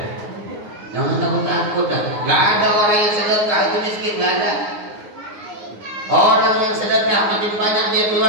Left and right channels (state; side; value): late; left; 9.6 ms